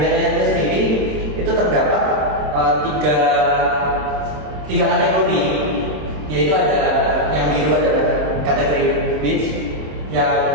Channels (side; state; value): left; late; 26 ms